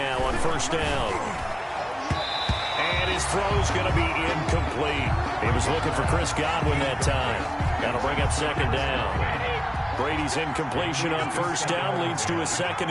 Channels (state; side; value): identical; both; correlation 1.00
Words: on first down. And his throw's going to be incomplete. He was looking for Chris Godwin that time. That'll bring up 2nd down. Brady's incompletion on first down leads to a 2nd